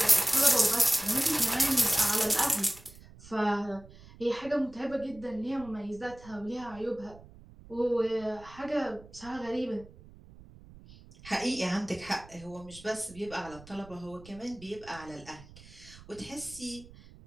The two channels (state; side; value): noise; right; rumble, 20 dB below the sound